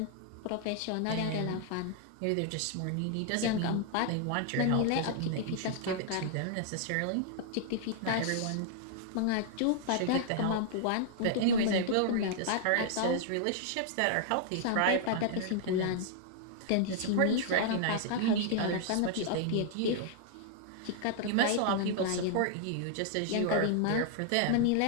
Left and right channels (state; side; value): different; both; correlation -0.01